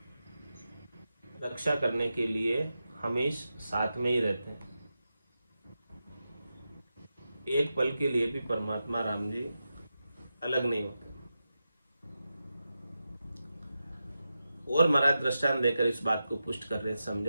रक्षा करने के लिए हमेशा साथ में ही रहते हैं। एक पल के लिए भी परमात्मा राम जी अलग नहीं होते। और महाराज दृष्टांत देकर इस बात को पुष्ट कर रहे,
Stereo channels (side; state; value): both; inverted; correlation -0.90